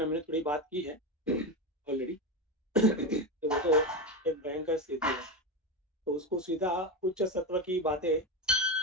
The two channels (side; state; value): both; normal; correlation 0.16